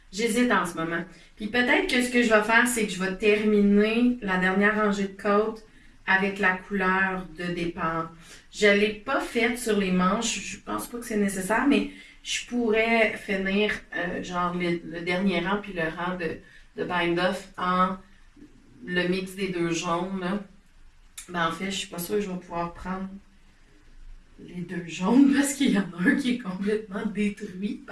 J'hésite en ce moment. Puis peut-être que ce que je vais faire, c'est que je vais terminer la dernière rangée de côtes avec la couleur de départ. Je ne l'ai pas faite sur les manches, je pense pas que c'est nécessaire, mais je pourrais finir genre le dernier rang puis le rang de bind-off en le mix des deux jaunes. Là. Ben en fait, je suis pas sûre que je vais pouvoir prendre les deux jaunes parce qu'il y en a un qui est complètement détruit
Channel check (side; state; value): both; identical; correlation 1.00